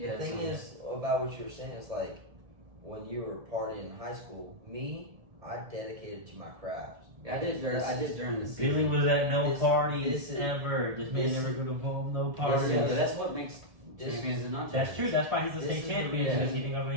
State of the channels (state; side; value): late; left; 1.7 ms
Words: The thing is about what you were saying is when you were partying in high school, I dedicated to my craft. Yeah, I did during the season. Billy was at no This- parties this is- ever. This man this- never go to home, no Yeah, parties. but that's what makes champions and not That's champions. true. That's why he's the This state is the champion reason. because he didn't go to